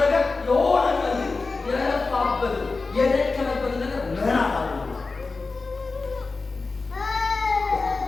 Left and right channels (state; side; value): quieter; right; 3.9 dB